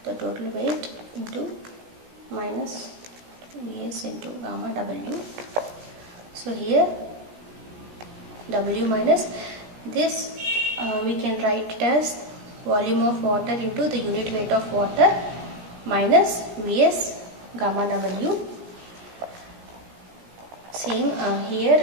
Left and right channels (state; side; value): late; left; 17 ms